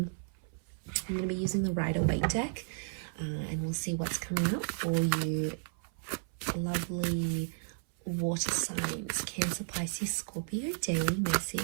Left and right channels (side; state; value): left; silent; 56 dB below the other